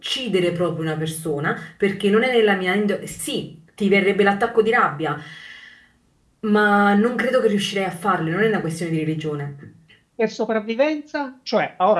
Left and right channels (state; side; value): identical; both; correlation 1.00